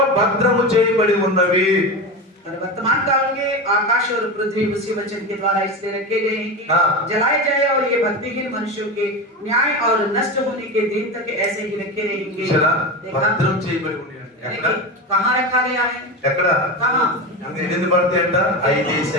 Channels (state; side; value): normal; both; correlation 0.22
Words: భద్రము చేయబడి ఉన్నవి. और वर्तमान काल के आकाश और पृथ्वी उसी वचन के द्वारा इसलिए रखे गए हैं कि हाँ। जलाए जाए, और ये भक्तिहीन मनुष्यों के न्याय और नष्ट होने के दिन तक ऐसे ही रखे रहेंगे। చూసారా? देखा? భద్రం చేయబడి ఉన్నాయి. ఎక్కడ? कहाँ रखा गया है? ఎక్కడ? कहाँ? ఎన్ని పడతాయి అంట?